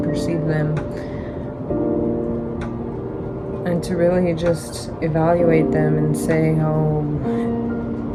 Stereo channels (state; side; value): identical; both; correlation 1.00